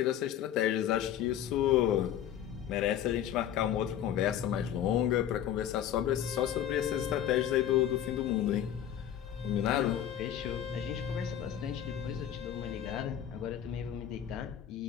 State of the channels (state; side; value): quieter; right; 10.3 dB